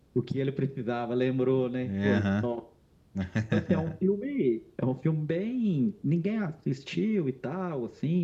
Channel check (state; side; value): identical; both; correlation 1.00